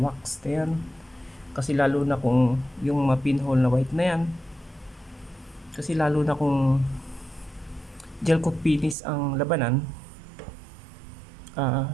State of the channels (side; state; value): left; drops out; at 9.0 s